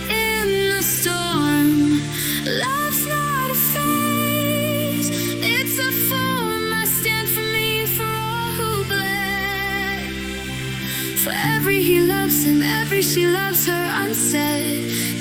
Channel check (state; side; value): identical; both; correlation 1.00